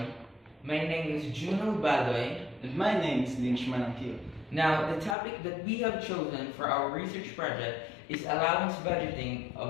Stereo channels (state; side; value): drops out; right; at 5.2 s